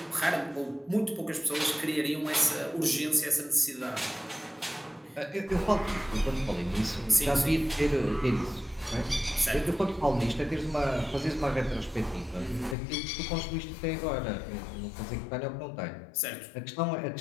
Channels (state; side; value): drops out; right; at 12.8 s